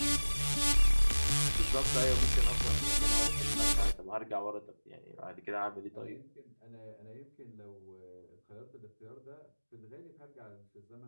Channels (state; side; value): inverted; both; correlation -1.00